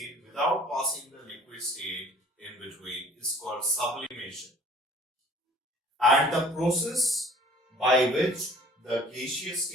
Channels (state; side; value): normal; both; correlation 0.51